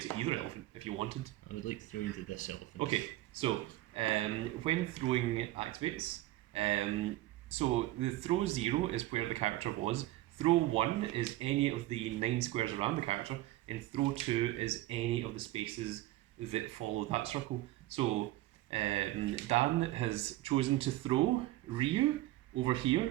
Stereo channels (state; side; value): quieter; left; 16.5 dB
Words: either elephant if you wanted. I would like to throw you into this elephant. Okay, so when throwing activates, so the throw 0 is where the character was. Throw 1 is any of the 9 squares around the character, and throw 2 is any of the spaces that follow that circle. So Dan has chosen to throw Ryu over